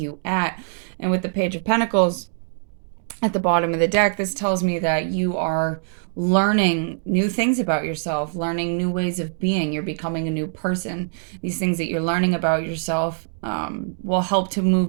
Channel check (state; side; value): silent; left; digital silence